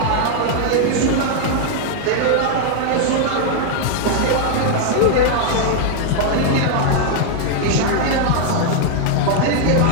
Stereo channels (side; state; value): both; different; correlation 0.00